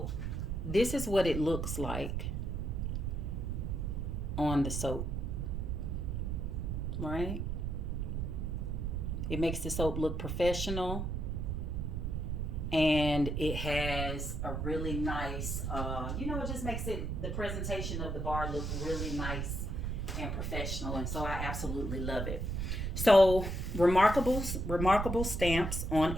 this is what it looks like on the soap, right? It makes the soap look professional, and it has a really nice, it just makes the presentation of the bar look really nice and professional. And so I absolutely love it. So remarkable stamps on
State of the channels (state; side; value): noise; right; rumble, 2 dB below the sound